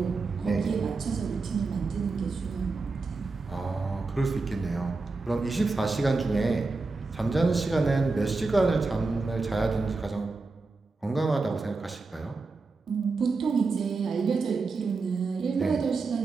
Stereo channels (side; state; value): left; quieter; 3.9 dB